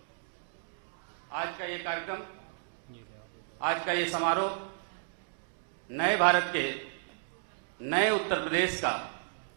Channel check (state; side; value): silent; left; digital silence